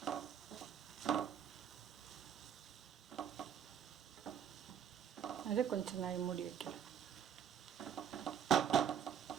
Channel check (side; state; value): left; quieter; 8.5 dB